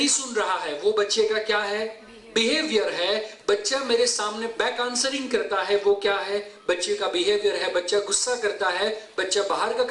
सुन रहा है, वो बच्चे का क्या है? बिहेवियर है। बच्चा मेरे सामने बैक आंसरिंग करता है, वो क्या है? बच्चे का बिहेवियर है। बच्चा गुस्सा करता है, बच्चा बाहर का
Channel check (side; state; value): both; identical; correlation 1.00